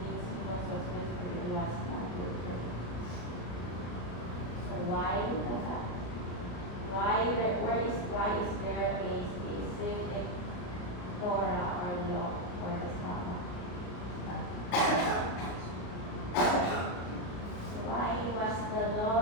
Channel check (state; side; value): late; right; 34 ms